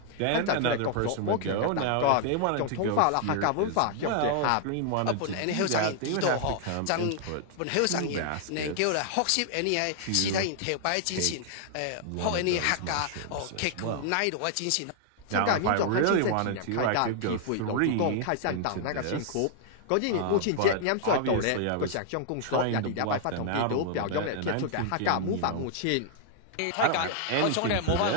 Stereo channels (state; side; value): different; both; correlation 0.00